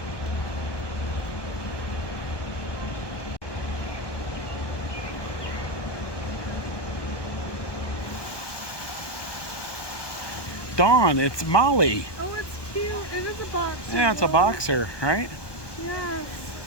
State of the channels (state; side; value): late; right; 1.1 ms